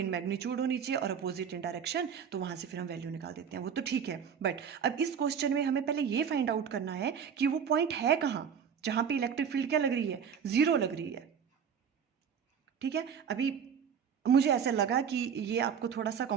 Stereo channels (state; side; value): quieter; left; 7.4 dB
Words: मैग्नीट्यूड होनी चाहिए और अपोजिट इन डायरेक्शन, तो वहाँ से फिर हम वैल्यू निकाल देते हैं। वो तो ठीक है, बट अब इस क्वेश्चन में हमें पहले ये फाइंड आउट करना है कि वो पॉइंट है कहाँ जहाँ पे इलेक्ट्रिक फील्ड क्या लग रही है? 0 लग रही है। ठीक है, अभी मुझे ऐसा लगा कि ये आपको थोड़ा सा